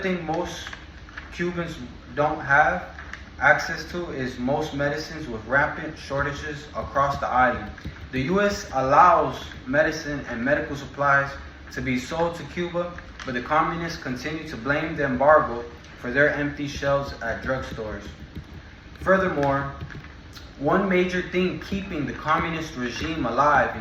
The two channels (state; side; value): identical; both; correlation 1.00